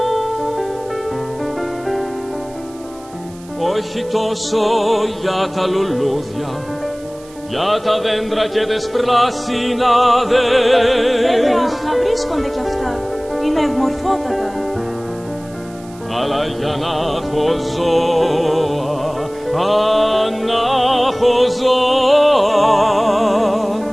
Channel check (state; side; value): noise; right; hiss, 24 dB below the sound